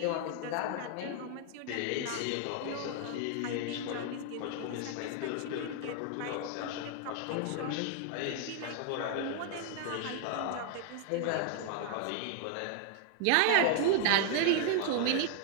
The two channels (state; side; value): different; both; correlation 0.00